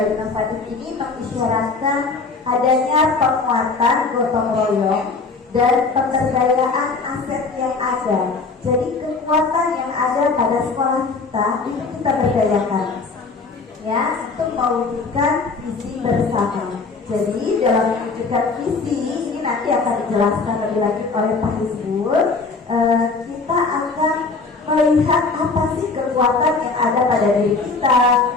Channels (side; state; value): right; quieter; 4.2 dB